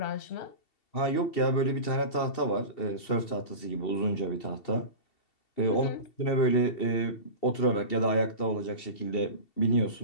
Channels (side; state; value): right; late; 2.7 ms